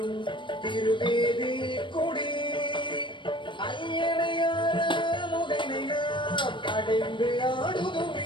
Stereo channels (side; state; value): right; late; 0.23 ms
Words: திருவேதி கொடி ஐயனையார முகனை நாம் அடைந்து